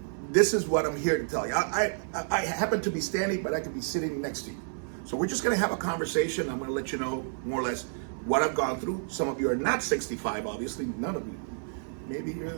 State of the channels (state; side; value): silent; left; 57 dB below the other